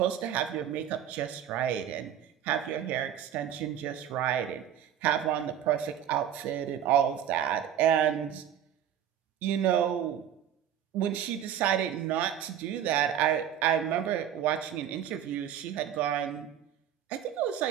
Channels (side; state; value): left; quieter; 9.9 dB